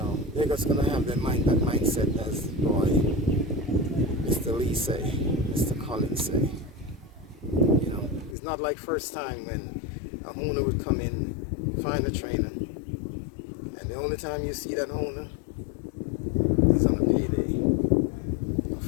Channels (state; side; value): drops out; right; at 8.3 s